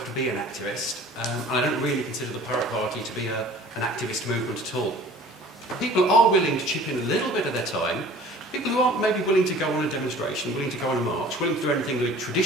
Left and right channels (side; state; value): both; normal; correlation 0.47